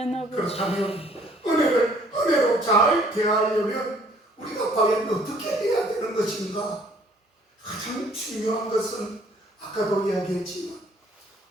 아버지. 그렇다면 은혜로 잘 대하려면 우리가 과연 어떻게 해야 되는 것인가? 가장 중요한 것은 아까도 이야기했지만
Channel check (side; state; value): both; normal; correlation 0.59